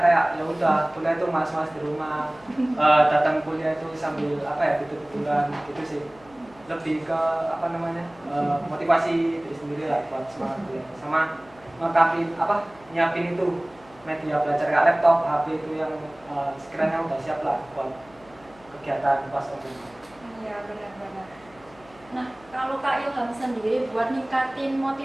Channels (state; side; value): noise; left; hum, 26 dB below the sound